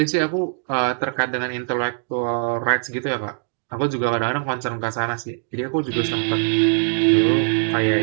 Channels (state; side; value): silent; left; digital silence